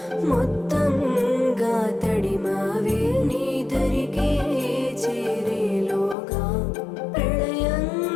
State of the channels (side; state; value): right; drops out; at 6.2 s